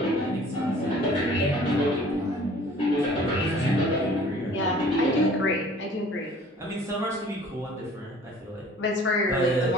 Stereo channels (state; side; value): normal; both; correlation 0.50